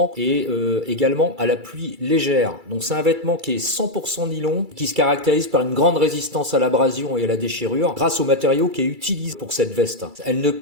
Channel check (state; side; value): late; left; 2.3 ms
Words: et également à la pluie légère. Donc c'est un vêtement qui est 100% nylon qui se caractérise par une grande résistance à l'abrasion et à la déchirure grâce au matériau qui est utilisé pour cette veste. Elle ne